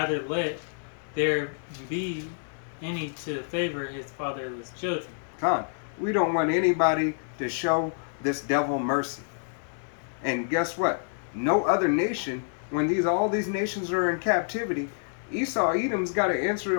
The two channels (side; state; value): right; silent; digital silence